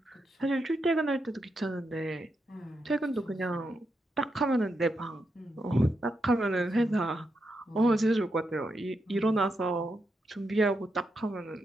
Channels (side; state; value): both; normal; correlation 0.84